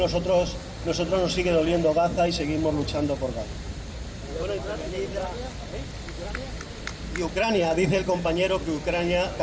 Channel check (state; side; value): identical; both; correlation 1.00